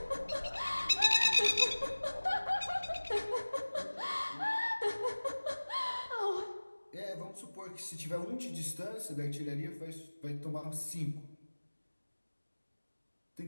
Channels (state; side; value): inverted; both; correlation -1.00